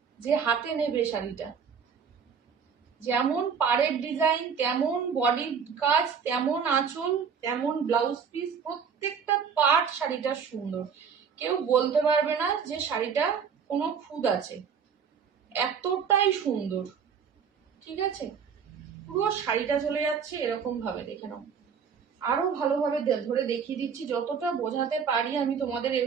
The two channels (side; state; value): left; quieter; 6.7 dB